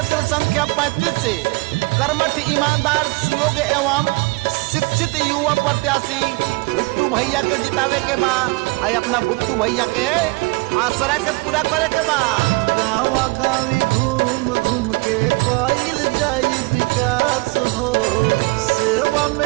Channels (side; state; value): left; quieter; 26.6 dB